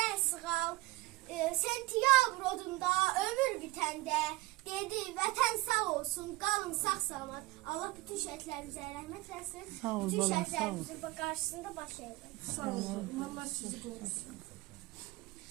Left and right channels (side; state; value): left; quieter; 20.1 dB